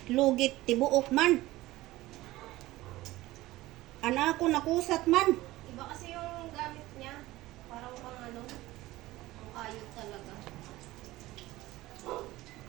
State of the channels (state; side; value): quieter; left; 17.7 dB